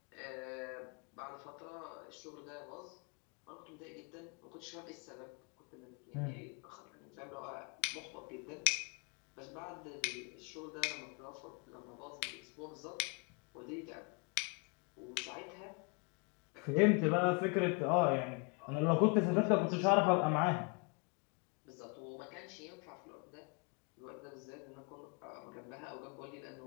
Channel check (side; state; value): right; quieter; 32.0 dB